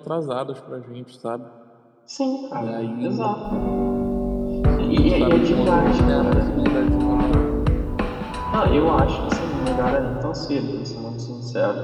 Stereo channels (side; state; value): both; identical; correlation 1.00